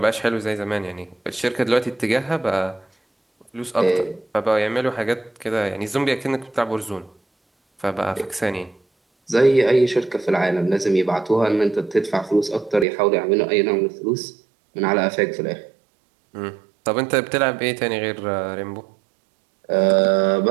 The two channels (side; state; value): left; drops out; at 12.9 s